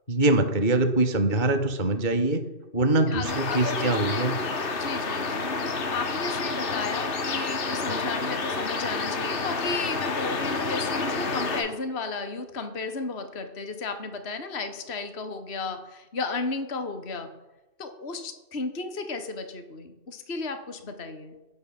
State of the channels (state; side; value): late; right; 2.6 ms